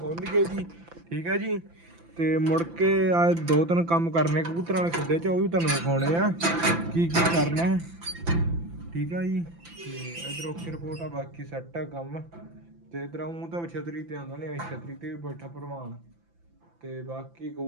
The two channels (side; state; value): left; late; 5.9 ms